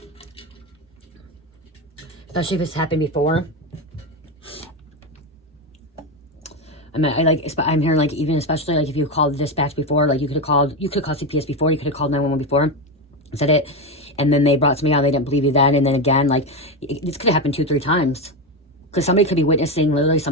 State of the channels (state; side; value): normal; both; correlation 0.13